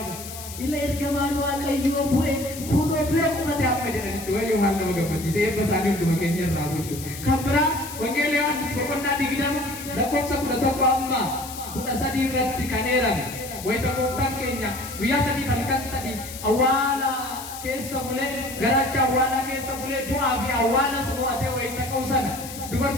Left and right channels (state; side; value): noise; left; hiss, 12 dB below the sound